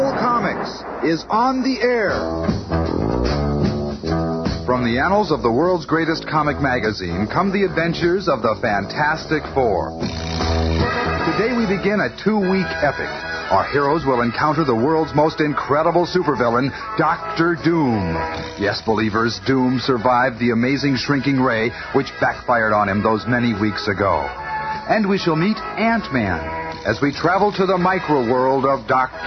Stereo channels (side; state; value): both; identical; correlation 1.00